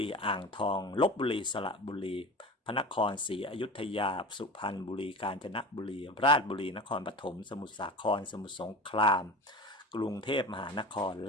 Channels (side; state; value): both; normal; correlation 0.33